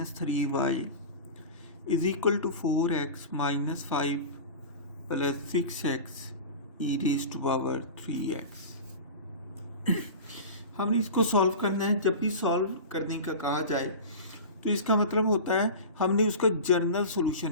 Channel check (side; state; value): both; inverted; correlation -0.31